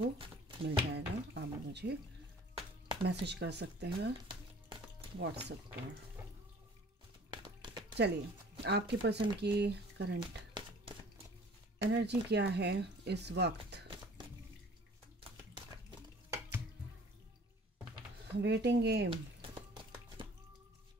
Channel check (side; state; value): both; normal; correlation 0.50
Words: मिल जाएगा, आप मुझे मैसेज कर सकते हैं व्हाट्सएप पर। चलिए, आपके पर्सन की करंट एनर्जी क्या है इस वक्त। वेटिंग गेम,